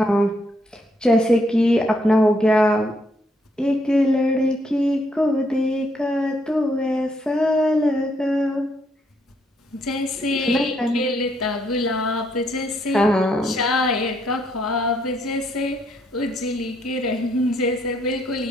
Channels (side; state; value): both; normal; correlation 0.73